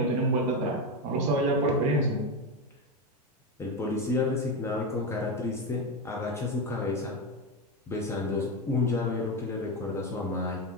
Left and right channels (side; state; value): both; normal; correlation 0.13